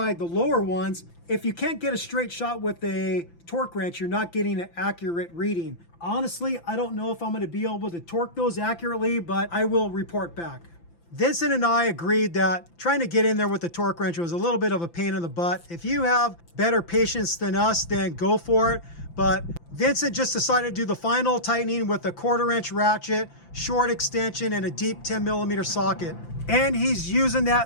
the lower ones, if you can't get a straight shot with a torque wrench, you're not getting an accurate reading. Honestly, I don't know if I'm gonna be able to torque those accurately, but I will report back. Vincent and I agreed that trying to get in there with the torque wrench was a little bit of a pain in the butt. If you have better patience than us, then go for it. But Vincent just decided to do the final tightening with a 1/4 inch ratchet, short extension, and a deep 10mm socket. And he's using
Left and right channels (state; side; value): late; right; 5.9 ms